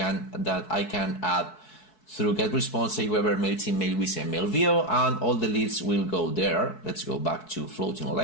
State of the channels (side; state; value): right; late; 4.6 ms